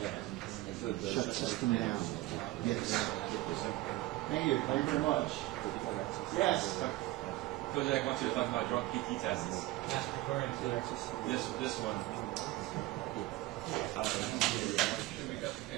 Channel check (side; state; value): left; quieter; 18.1 dB